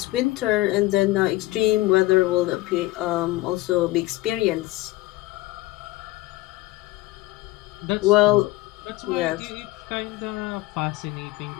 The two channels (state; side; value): quieter; right; 18.3 dB